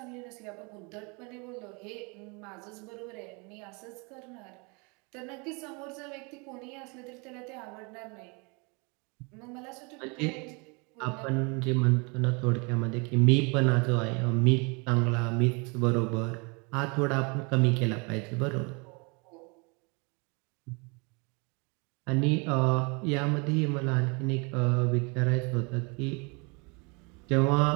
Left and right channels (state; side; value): quieter; left; 31.0 dB